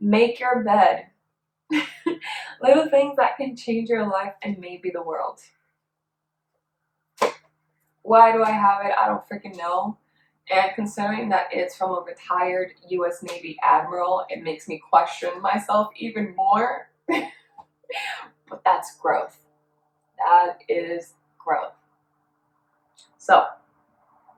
Make Your Bed. Little things that can change your life and maybe the world. Why do I have it? I don't freaking know. And considering that it's from a retired US Navy admiral, it makes me question myself even more. But that's growth. That is growth. So,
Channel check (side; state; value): both; identical; correlation 1.00